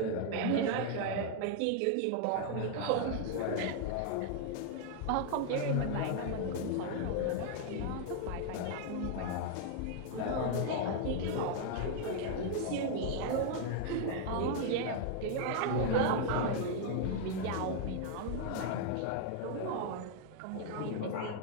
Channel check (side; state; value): both; different; correlation 0.00